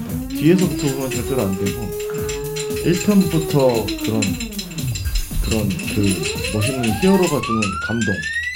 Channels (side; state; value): both; identical; correlation 1.00